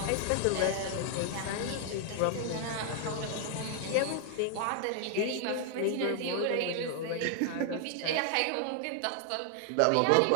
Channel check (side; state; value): both; different; correlation 0.00